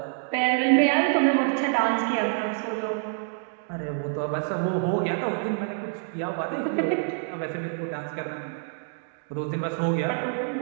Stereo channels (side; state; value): left; silent; digital silence